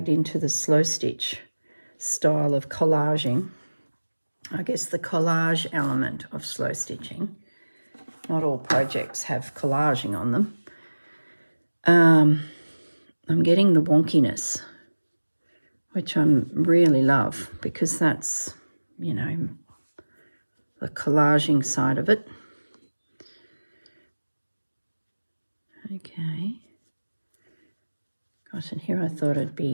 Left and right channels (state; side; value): inverted; both; correlation -1.00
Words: into the slow stitch style of collaging, I guess the collage element of slow stitching, not all projects have collaging on them, I'm getting the wonkiness, which I really love, because that's, you know, the collaging side of it. Okay. Gosh, and here I thought it'd